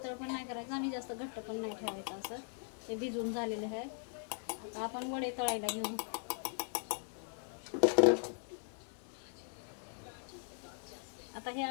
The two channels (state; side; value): silent; right; 52 dB below the other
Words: पण नाही करायचं आणि जास्त घट्ट पण नाही ठेवायचं. असं ते भिजवून झालेलं आहे. आता आपण वडे तळायला घेऊ. आता हे